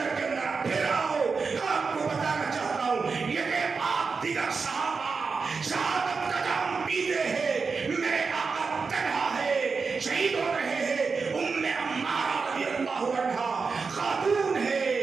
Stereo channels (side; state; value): left; quieter; 4.8 dB